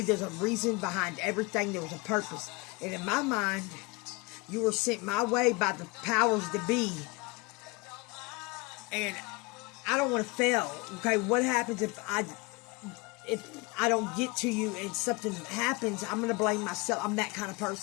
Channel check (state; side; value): quieter; right; 25.0 dB